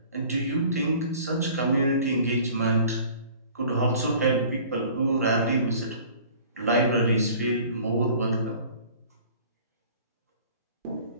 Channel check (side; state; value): both; inverted; correlation -0.49